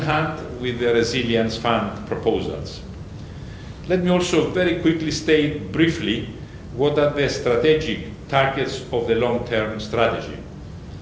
with the Resilience Fund proposals. Let me also very quickly state briefly what are the strategic targets of the long-term strategy.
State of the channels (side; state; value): both; identical; correlation 1.00